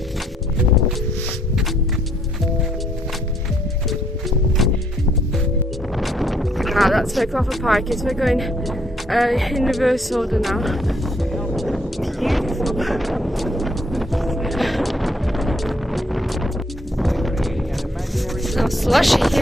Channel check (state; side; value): normal; both; correlation 0.69